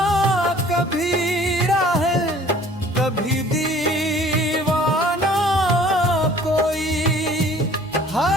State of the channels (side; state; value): both; normal; correlation 0.52